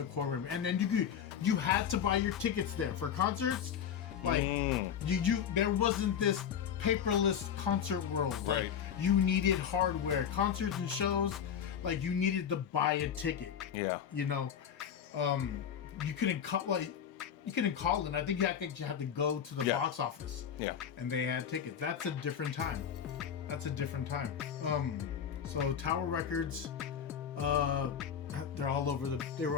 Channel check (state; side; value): quieter; right; 8.3 dB